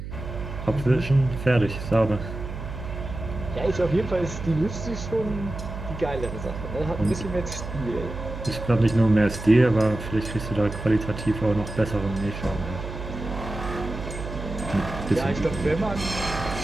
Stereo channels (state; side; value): noise; right; hum, 9 dB below the sound